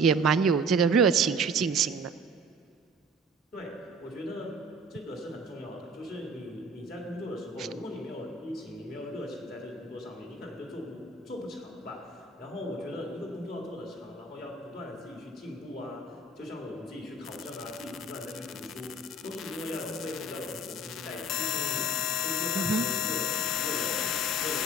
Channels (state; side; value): normal; both; correlation 0.47